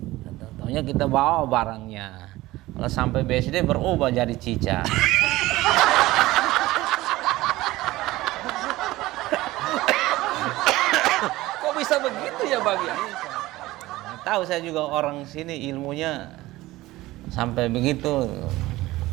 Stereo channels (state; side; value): quieter; left; 18.0 dB